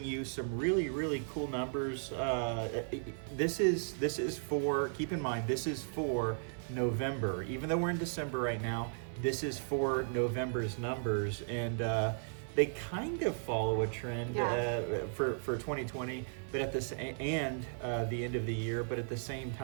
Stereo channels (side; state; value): left; silent; 54 dB below the other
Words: you some really cool numbers. This is for, keep in mind, this is for November. Even though we're in December right now, this is for November's numbers, and they kind of follow a trend for 2020, but at this and the end of the year. But at the same